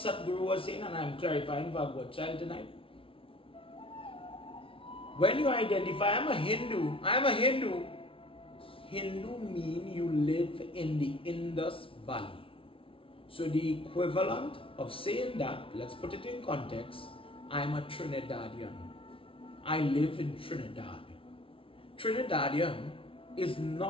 was saying, and I'm clarifying for our child tonight. When you identify, I'm a Hindu. Hindu means you live in the Indus Valley. So the equivalent of saying that, let's put it in context, I'm a Trinidadian. I live in Trinidad. Trinidadian is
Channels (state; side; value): late; right; 0.26 ms